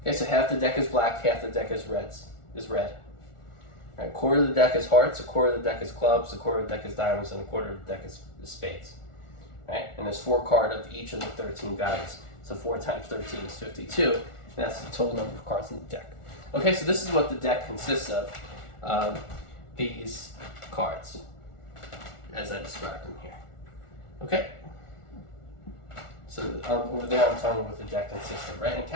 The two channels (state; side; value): late; right; 1.4 ms